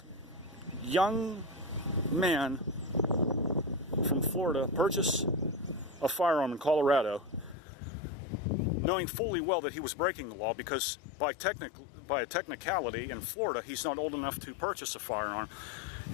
young man from Florida purchase a firearm in Colorado, knowing fully well that he was breaking the law, because by a technicality in Florida, he's not old enough to purchase a firearm.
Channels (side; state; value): right; drops out; at 7.6 s